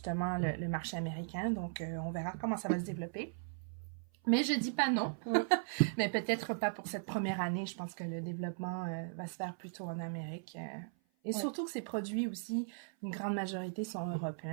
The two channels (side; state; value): left; silent; 53 dB below the other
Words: le marché américain. Donc, on verra comment ça va se développer. Mais je dis pas non. Mais peut-être pas pour cette première année. Je pense que le développement va se faire plutôt en Amérique. Et surtout que ces produits aussi, une grande majorité sont